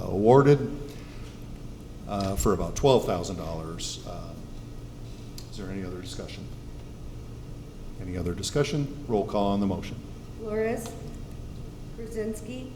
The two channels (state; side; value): identical; both; correlation 1.00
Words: for about $12,000. Is there any other discussion? Any other discussion? Roll call on the motion. Flores, Krasinski,